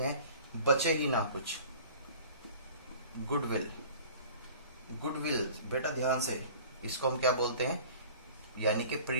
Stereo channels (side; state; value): both; inverted; correlation -0.45